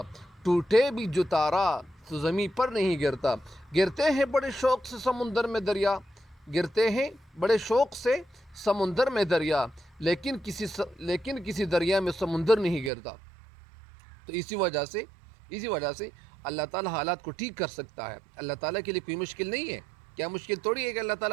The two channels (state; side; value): drops out; left; at 12.9 s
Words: ٹوٹے بھی جو تارا تو زمین پر نہیں گرتا. گرتے ہیں بڑے شوق سے سمندر میں دریا, گرتے ہیں بڑے شوق سے سمندر میں دریا, لیکن کسی دریا میں سمندر نہیں گرتا. تو اسی وجہ سے اللہ تعالیٰ حالات کو ٹھیک کر سکتا ہے. اللہ تعالیٰ کے لیے کوئی مشکل نہیں ہے. کیا مشکل تھوڑی ہے کہ اللہ